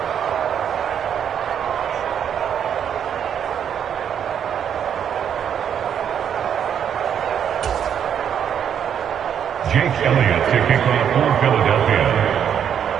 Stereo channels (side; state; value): left; quieter; 8.6 dB